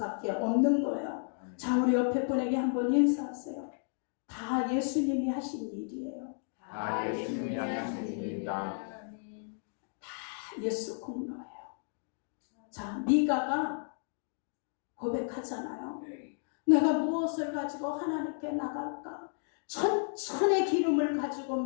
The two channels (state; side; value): silent; right; 56 dB below the other